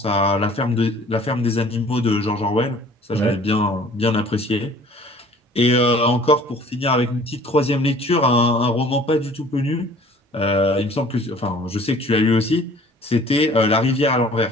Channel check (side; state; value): both; normal; correlation 0.51